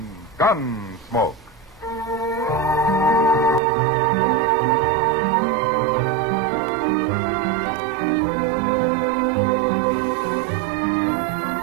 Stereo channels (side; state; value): left; drops out; at 3.6 s